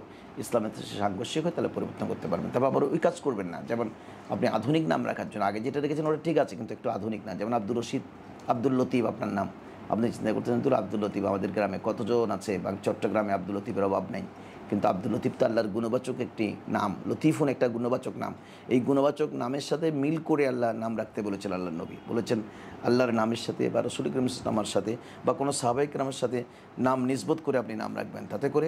ইসলামের সাথে সাংঘর্ষিক হয় তাহলে পরিবর্তন করতে পারবেন। তবে আবার ওই কাজ করবেন না, যেমন আপনি আধুনিক নাম রাখার জন্য আগে যেটা রেখেছেন ওটা ঠিক আছে, কিন্তু একটু আধুনিক না। যেমন আব্দুর রশিদ, আব্দুল লতিফ আপনার নাম, আপনি চিন্তা করতেছেন তো আব্দুল লতিফ, আমাদের গ্রামে কতজন আছে, বা চট্টগ্রামে আব্দুল লতিফের অভাব নেই, কিন্তু আব্দুল লতিফ তো আল্লাহর গুণবাচক একটি নাম, লতিফুন একটা গুণবাচক নাম। এই গুণবাচক নামের সাথে মিল করে আল্লাহ নাম রাখতে বলেছেন। আল্লাহর নবী বলেছেন আল্লাহর নামের সাথে বা রাসূল করিম নামের সাথে বা কোনো সাহাবায়ে কেরামের সাথে নাম নিসবত করে আপনি নাম রাখবেন, তাতে করে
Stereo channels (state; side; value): identical; both; correlation 1.00